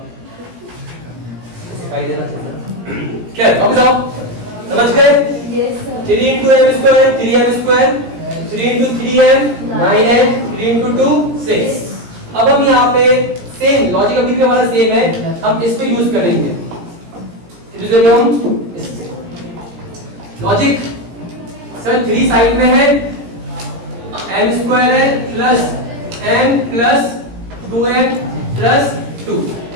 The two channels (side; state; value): left; late; 17 ms